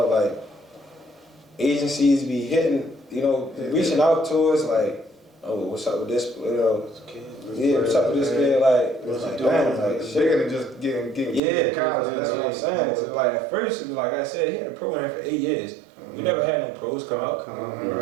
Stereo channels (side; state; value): left; drops out; at 11.4 s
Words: like, agencies be hitting, you know, reaching out to us, like, oh, what's up with this, you know, Yeah, what's up with this kid? Like, damn, like, it's bigger than just getting yeah, college. that's what I'm saying. So like at first it was like I said, he had a program for 8 years. We never had no pros come out.